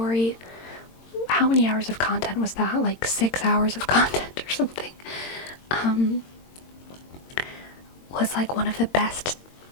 how many hours of content was that? Like 6 hours of content or something. Was like one of the best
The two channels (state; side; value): late; right; 22 ms